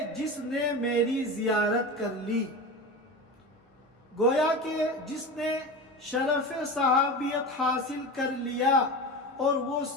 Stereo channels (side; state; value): both; normal; correlation 0.27